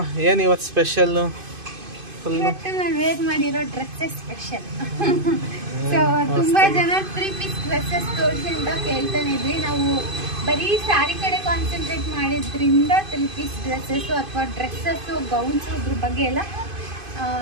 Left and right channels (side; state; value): left; late; 2.5 ms